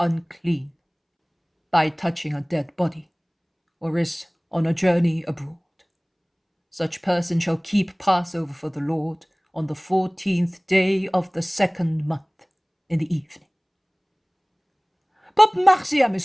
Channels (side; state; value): both; identical; correlation 1.00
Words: by touching a dead body, or is on a journey abroad, such person shall keep Passover for the Lord on the 14th day of the 2nd month in the evening. But Marciam